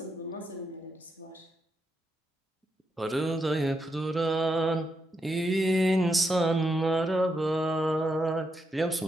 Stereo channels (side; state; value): both; normal; correlation 0.82